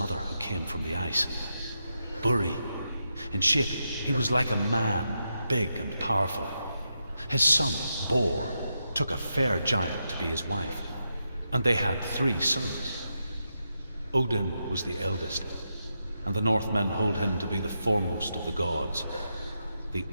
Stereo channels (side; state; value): both; inverted; correlation -0.85